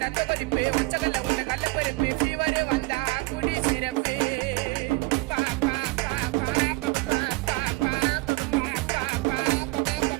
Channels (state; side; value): quieter; left; 24.0 dB